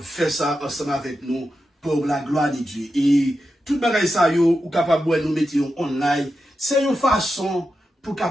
de faire ça ensemble avec nous, pour la gloire de Dieu. Et tout bagay ça yo, ou capable de nous mettre online, c'est une façon pour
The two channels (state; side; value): normal; both; correlation 0.89